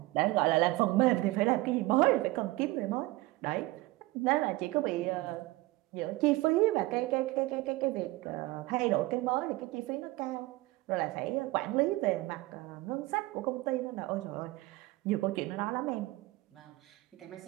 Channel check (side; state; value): left; quieter; 19.9 dB